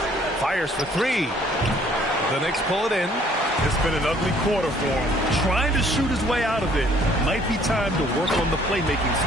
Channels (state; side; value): normal; both; correlation 0.60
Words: Fires for 3. The Knicks pull it in. It's been an ugly quarter for him. Trying to shoot his way out of it. Might be time to work on the playmaking